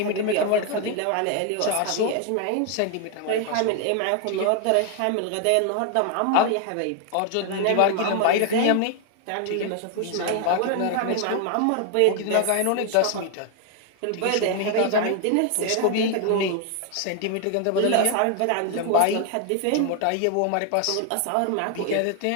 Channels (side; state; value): both; different; correlation 0.00